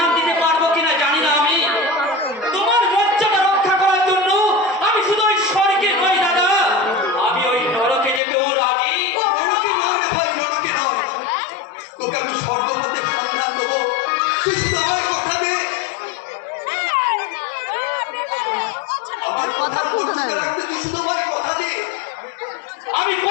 দিতে পারবো কিনা জানি না আমি। তোমার লজ্জাটা রক্ষা করার জন্য আমি শুধু ওই স্বর্গে নই দাদা, আমি ওই নরকে যেতেও রাজি। নরকে নয় রে ভাই, নরকে নয়। তোকে আমি স্বর্গপথের সন্ধান দেবো, তুই শুধু আমার কথা দে। আমার কথার মর্যাদা রাখতে তুই শুধু আমার কথা দে। আমি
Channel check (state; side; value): drops out; right; at 8.2 s